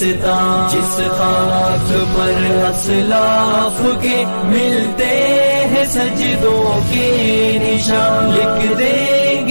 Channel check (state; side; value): inverted; both; correlation -1.00